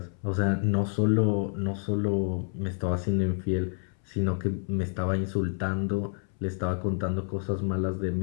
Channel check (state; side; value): silent; right; 59 dB below the other